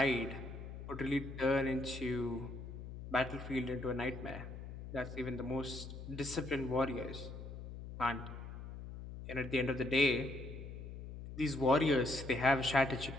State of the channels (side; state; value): left; noise; hum, 10 dB below the sound